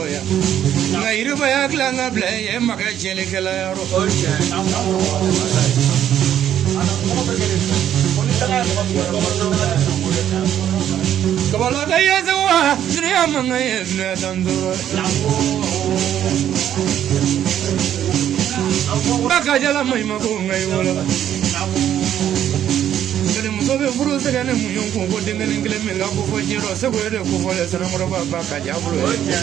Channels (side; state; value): left; quieter; 10.5 dB